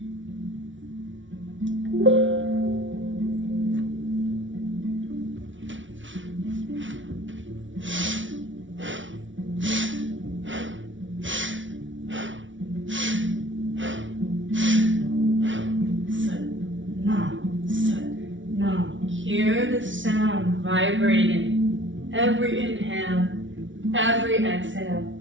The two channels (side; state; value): left; late; 0.56 ms